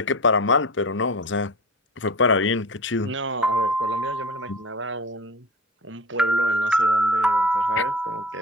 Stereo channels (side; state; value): both; normal; correlation 0.33